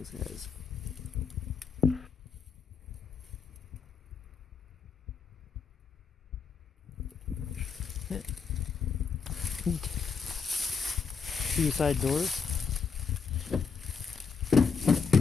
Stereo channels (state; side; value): quieter; right; 5.6 dB